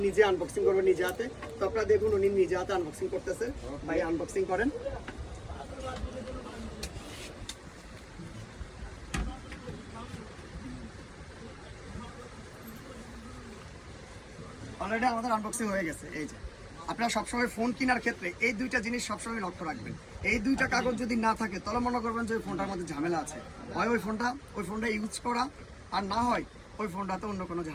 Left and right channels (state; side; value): identical; both; correlation 1.00